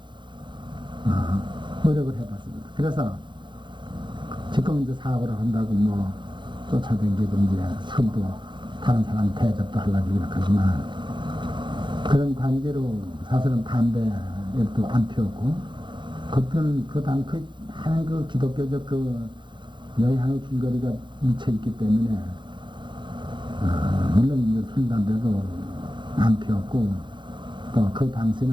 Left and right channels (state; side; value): late; left; 0.23 ms